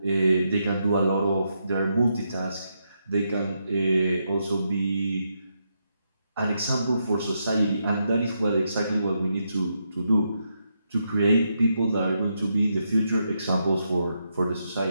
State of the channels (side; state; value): both; inverted; correlation -0.81